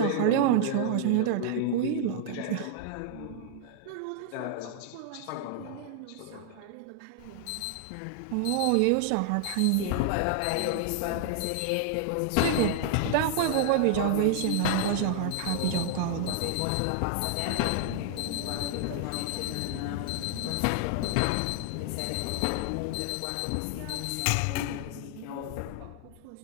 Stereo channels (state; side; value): different; both; correlation 0.00